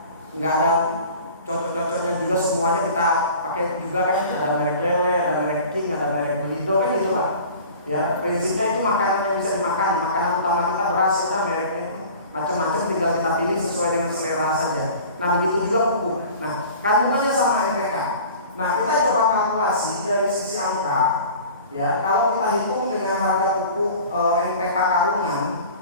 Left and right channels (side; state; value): both; inverted; correlation -0.42